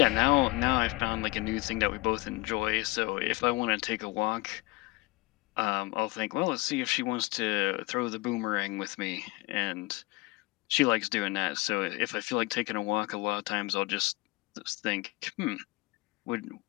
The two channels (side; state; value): right; quieter; 22.4 dB